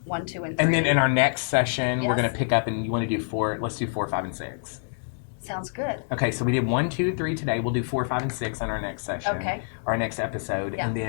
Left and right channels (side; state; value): right; silent; digital silence